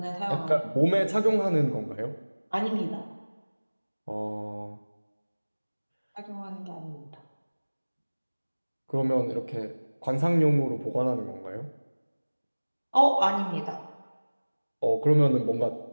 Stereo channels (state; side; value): inverted; both; correlation -1.00